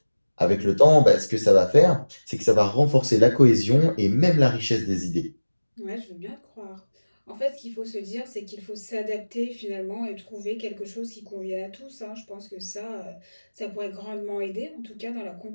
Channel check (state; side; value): inverted; both; correlation -1.00